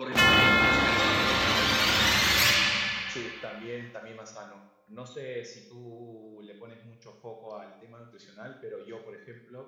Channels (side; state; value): both; identical; correlation 1.00